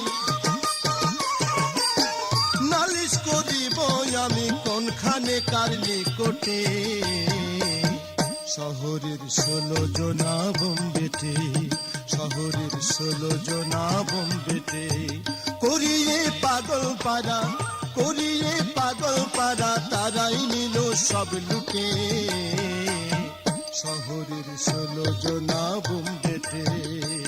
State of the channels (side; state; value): both; identical; correlation 1.00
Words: নালিশ করিব আমি কোনখানে কার নিকটে। শহরের 16 জনা বোম্বেতে, শহরের 16 জনা বোম্বেতে, করিয়ে পাগল পারা, করিয়ে পাগল পারা, তারাই নিল সব লুটে। শহরের 16 জনা বোম্বেতে।